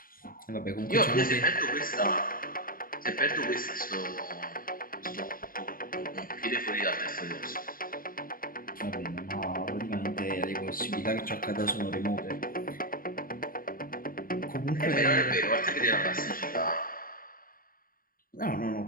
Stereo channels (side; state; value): right; late; 0.41 ms